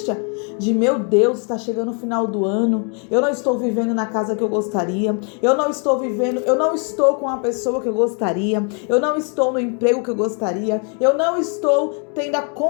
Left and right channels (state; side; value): quieter; right; 39.6 dB